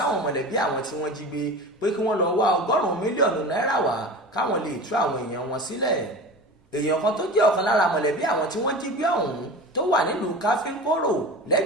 mọ̀lẹ́bí àwọn tí wọ́n jí gbé pé kí wọ́n lọ wá 100 mílíọ̀nù náírà wá káwọn lè tú àwọn èèyàn wọn sílẹ̀. Èèyàn kan tó jẹ́ ọ̀kan lára mọ̀lẹ́bí àwọn tí wọ́n jí gbé ọ̀hún tó wà nílùú Káfíńkóró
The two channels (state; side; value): normal; both; correlation 0.33